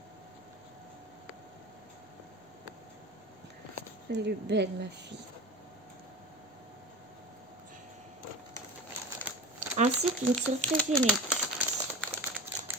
Elle est belle ma fille. Ainsi qu'une surprise inédite.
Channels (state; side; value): normal; both; correlation 0.31